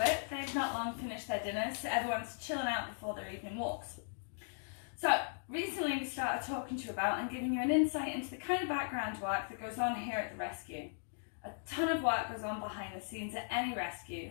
They've not long finished their dinners, so everyone's chilling out before their evening walks. So, recently we started talking to you about and giving you an insight into the kind of background work that goes on here at the rescue. A ton of work goes on behind the scenes at any rescue,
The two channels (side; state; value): right; silent; digital silence